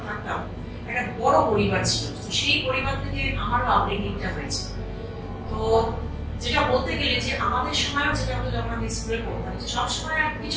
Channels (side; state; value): both; identical; correlation 1.00